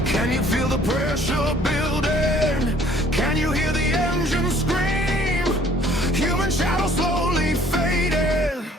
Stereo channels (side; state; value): both; normal; correlation 0.57